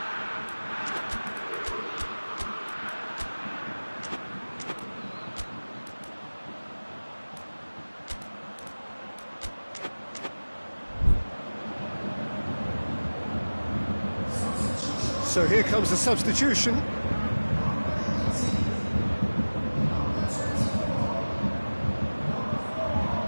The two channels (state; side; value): inverted; both; correlation -1.00